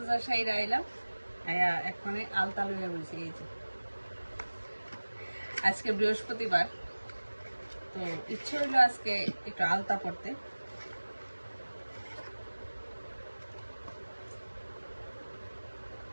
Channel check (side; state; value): both; inverted; correlation -1.00